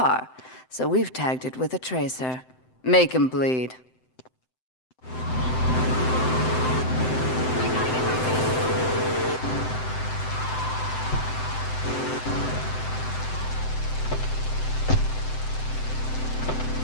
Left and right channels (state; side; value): late; right; 7.8 ms